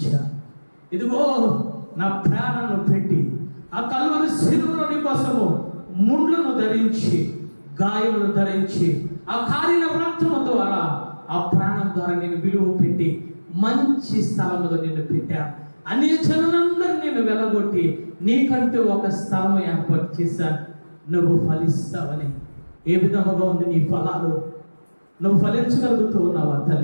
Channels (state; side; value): inverted; both; correlation -1.00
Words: ఇదిగో నా ప్రాణాలను పెట్టి ఆ కల్వరి శిలువలోని కోసము ముండ్లను ధరించి, గాయములు ధరించి, ఆ కారిన రక్తము ద్వారా, ఆ ప్రాణం ద్వారా నేను విలువ పెట్టి మంచి స్థలంలో నిన్ను పెట్టాను. అన్ని జనులందరూ నేను వెళ్ళగొట్టి నీకంటూ ఒక స్థలం ఏర్పాటు చేశాను. నువ్వు ఫలిస్తావని. ఏ విధముగా ఉంది నీ ఫలాలు? నువ్వు ఫలించగలుగుతూ ఉన్నావా